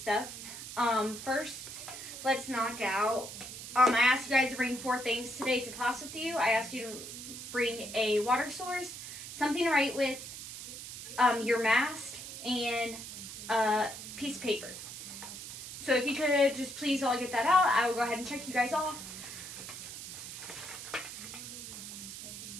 First, let's knock out, I asked you guys to bring 4 things today to class with you. I asked you to bring a water source, something to write with, your mask, and a piece of paper. So if you could just please all get that out, I will go ahead and check you guys off.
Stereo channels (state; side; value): noise; right; hiss, 10 dB below the sound